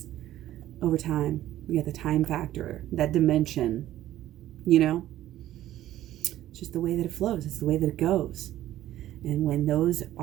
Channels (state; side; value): quieter; left; 13.6 dB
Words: over time. You get the time factor, that dimension, you know. It's just the way that it flows. It's the way that it goes. And when those